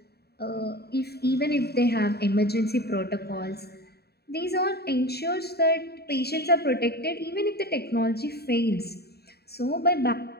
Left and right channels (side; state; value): right; late; 0.47 ms